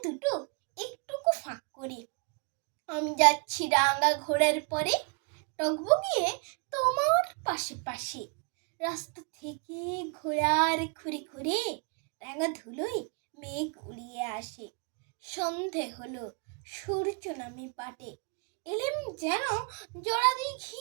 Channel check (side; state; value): left; quieter; 36.0 dB